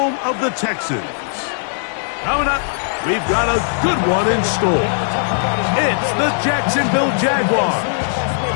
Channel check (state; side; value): silent; right; digital silence